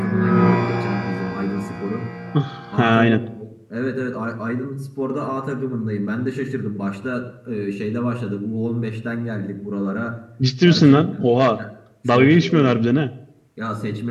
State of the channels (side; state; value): both; identical; correlation 1.00